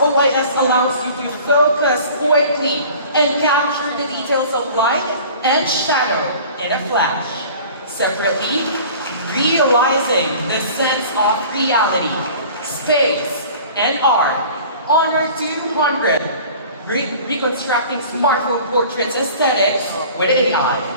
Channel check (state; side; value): inverted; both; correlation -0.44